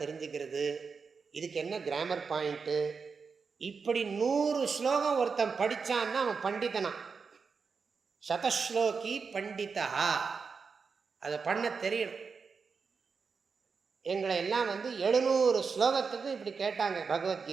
தெரிஞ்சுக்கிறது, இதுக்கு என்ன கிராமர் பாயிண்ட்டு, இப்படி 100 ஸ்லோகம் ஒருத்தன் படித்தான்னா அவன் பண்டிதனா. சதஸ்லோகி பண்டிதா. அதை பண்ண தெரியணும். எங்களை எல்லாம் 700 ஸ்லோகத்துக்கு இப்படி கேட்டாங்க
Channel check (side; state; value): left; quieter; 5.3 dB